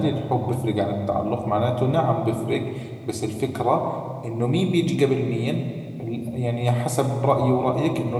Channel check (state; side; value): identical; both; correlation 1.00